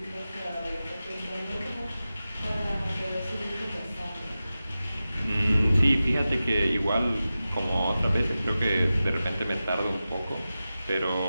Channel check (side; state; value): both; inverted; correlation -0.94